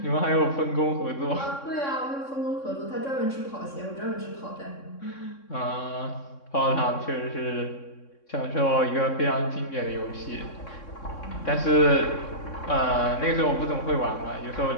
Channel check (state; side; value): late; right; 3.6 ms